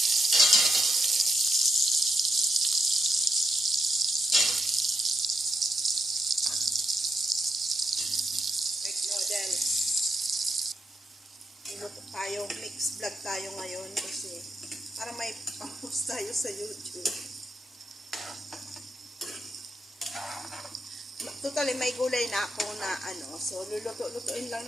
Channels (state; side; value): normal; both; correlation 0.81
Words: Egg noodles. Luto tayo, mix vlog tayo ngayon kasi para may pang-post tayo sa YouTube. Totally may gulay na ako na so luluto-lutuin lang